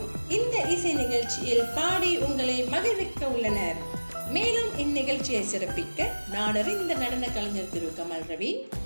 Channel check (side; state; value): both; inverted; correlation -1.00